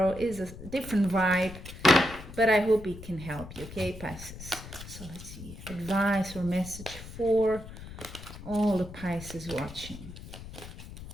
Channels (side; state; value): left; noise; rumble, 13 dB below the sound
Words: it's a different vibe, but I hope it can help you, okay, Pisces? So let's see, advice or message for all the Pisces watching.